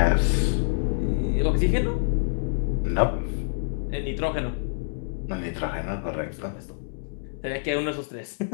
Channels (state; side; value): silent; right; digital silence